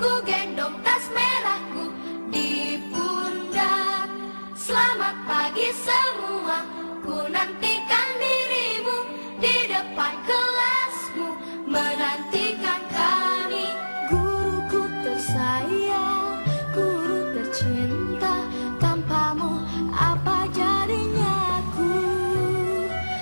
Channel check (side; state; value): both; inverted; correlation -1.00